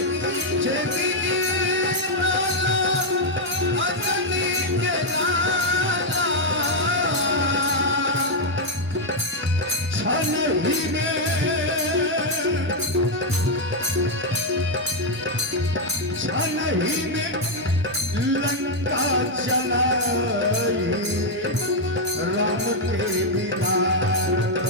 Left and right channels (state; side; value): normal; both; correlation 0.00